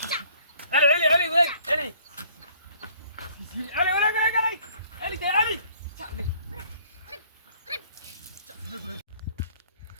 تعال علي علي وين علي علي وين علي علي ده علي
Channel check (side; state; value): both; inverted; correlation -0.58